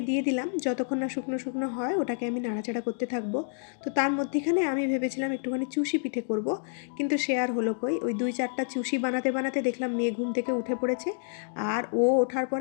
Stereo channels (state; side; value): silent; right; digital silence